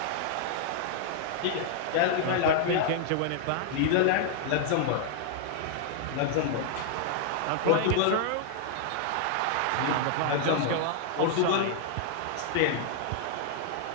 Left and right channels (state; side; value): different; both; correlation 0.00